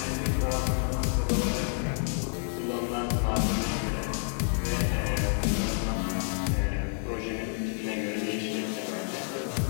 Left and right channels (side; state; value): right; silent; 58 dB below the other